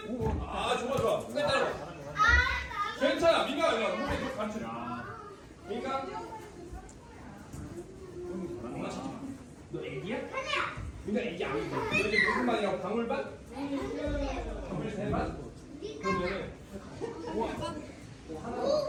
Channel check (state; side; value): identical; both; correlation 1.00